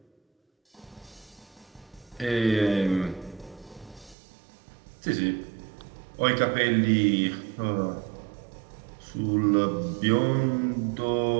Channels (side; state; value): left; drops out; at 4.2 s